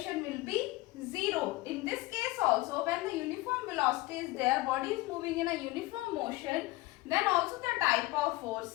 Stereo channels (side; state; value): right; quieter; 20.0 dB